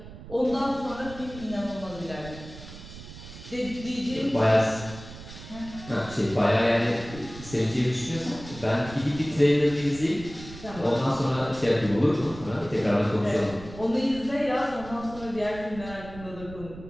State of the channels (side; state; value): right; noise; rumble, 15 dB below the sound